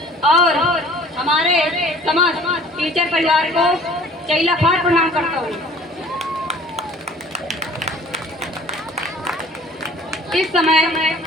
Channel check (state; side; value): normal; both; correlation 0.50